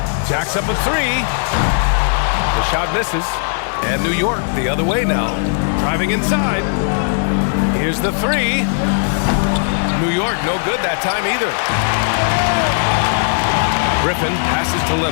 Jacks up a 3. The shot misses. And New York the other way now. Driving inside. Here's the 3. New York no good that time either. Griffin passes to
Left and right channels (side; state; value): right; silent; 68 dB below the other